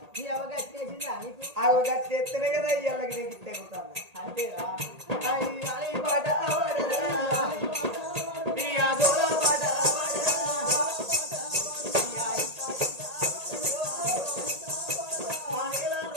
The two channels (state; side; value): late; left; 1.8 ms